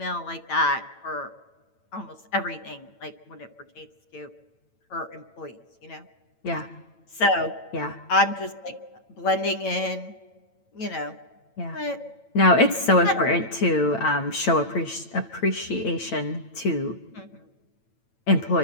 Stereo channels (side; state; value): right; late; 9.0 ms